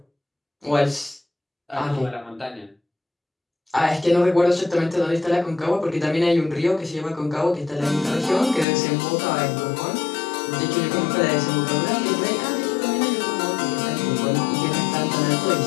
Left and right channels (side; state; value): right; drops out; at 8.7 s